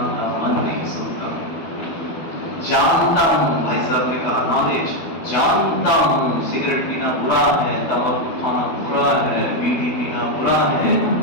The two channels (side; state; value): right; late; 12 ms